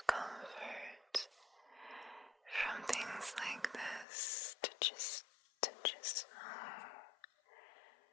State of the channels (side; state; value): right; drops out; at 4.0 s